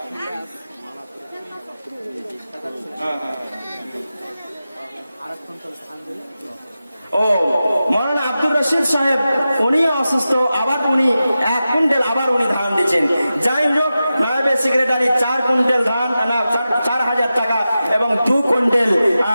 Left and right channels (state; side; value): inverted; both; correlation -0.93